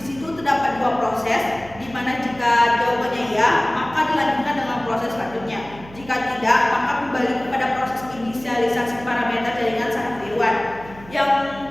situ terdapat dua proses, di mana jika jawabannya ya, maka dilanjutkan dengan proses selanjutnya. Jika tidak, maka kembali kepada proses inisialisasi parameter jaringan saraf tiruan. Yang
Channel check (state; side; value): noise; right; hum, 19 dB below the sound